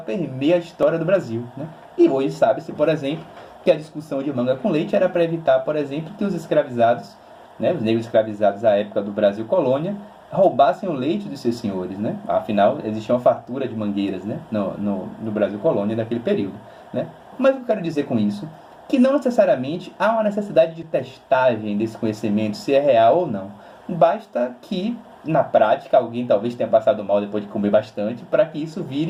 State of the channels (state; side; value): identical; both; correlation 1.00